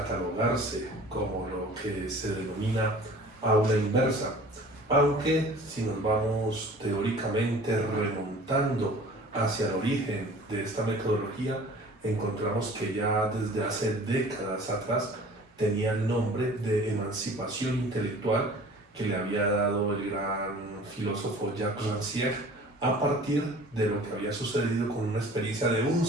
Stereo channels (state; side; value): normal; both; correlation 0.46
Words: como lo que se denomina aula inversa, aunque si nos vamos teóricamente remontando hacia el origen de esta metodología, encontramos que ya desde hace décadas atrás tenía el nombre de emancipación intelectual que le había dado el gran filósofo Jacques Rancière a partir de lo que había sucedido con una experiencia de un